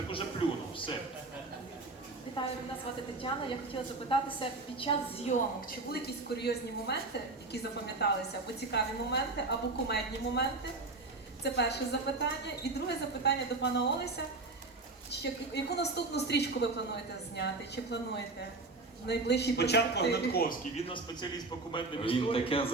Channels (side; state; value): left; quieter; 3.3 dB